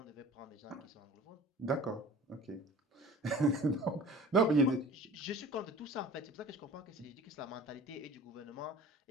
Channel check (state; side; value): normal; both; correlation 0.43